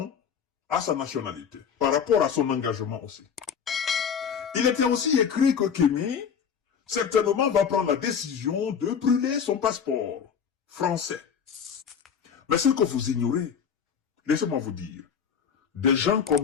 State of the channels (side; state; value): right; quieter; 7.2 dB